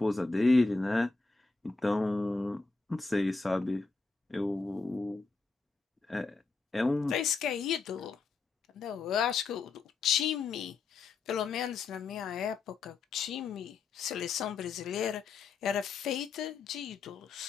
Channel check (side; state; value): right; quieter; 4.2 dB